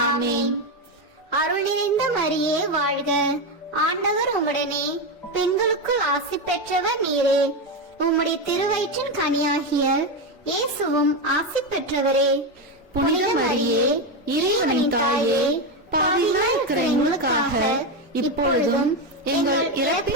ஆமென். அருள் நிறைந்த மரியே வாழ்க. ஆண்டவர் உம்முடனே, பெண்களுக்குள் ஆசி பெற்றவர் நீரே. உம்முடைய திருவயிற்றின் கனியாகிய இயேசுவும் ஆசி பெற்றவரே. புனித மரியே, இறைவனின் தாயே, பாவிகளாய் இருக்கிற எங்களுக்காக இப்பொழுதும் எங்கள்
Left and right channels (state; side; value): normal; both; correlation 0.11